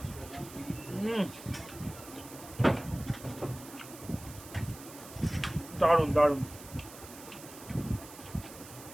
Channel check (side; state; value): right; noise; hiss, 16 dB below the sound